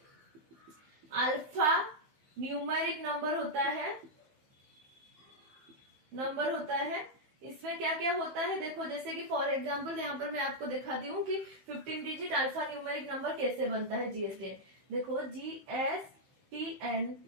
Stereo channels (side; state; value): left; late; 15 ms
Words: अल्फा न्यूमेरिक नंबर होता है। इसमें क्या क्या होता है देखो, जैसे कि फॉर एग्जांपल यहाँ पर मैं आपको दिखाती हूँ कि 15 डिजिट अल्फा न्यूमेरिक नंबर कैसे बनता है जीएसटीएन। देखो GSTNIN,